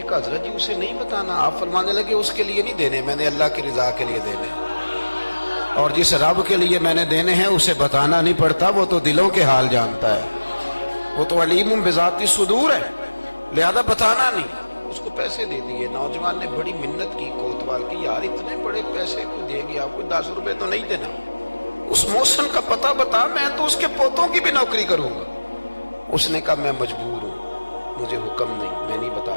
کہا حضرت جی اسے نہیں بتانا. آپ فرمانے لگے اس کے لیے نہیں دینے, میں نے اللہ کی رضا کے لیے دینے, اور جس رب کے لیے میں نے دینے ہیں اسے بتانا نہیں پڑتا, وہ تو دلوں کے حال جانتا ہے, وہ تو علیم بذات الصدور ہے, لہذا بتانا نہیں. اس کو پیسے دے دیے. نوجوان نے بڑی منت کی کوتوال کی, یار اتنے بڑے پیسے کو دے گیا, کوئی 10 روپے تو نہیں دینا, اس محسن کا پتہ بتا, میں تو اس کے پوتوں کی بھی نوکری کروں گا. اس نے کہا میں مجبور ہوں, مجھے حکم نہیں, میں نہیں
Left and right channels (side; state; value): both; inverted; correlation -1.00